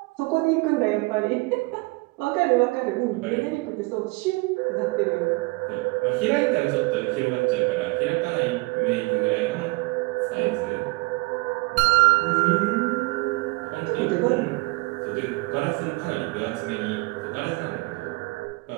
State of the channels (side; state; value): left; quieter; 26.4 dB